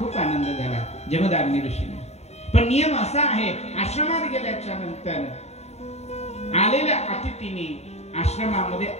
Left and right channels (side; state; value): right; late; 0.31 ms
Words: आनंद झाला, जमदाग्नी ऋषींना. पण नियम असा आहे, आश्रमात गेल्याच्या नंतर आलेल्या अतिथीने आश्रमामध्ये